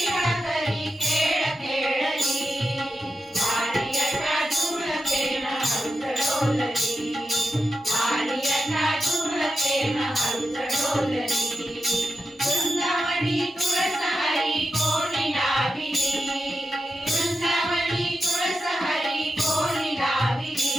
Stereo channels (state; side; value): normal; both; correlation 0.89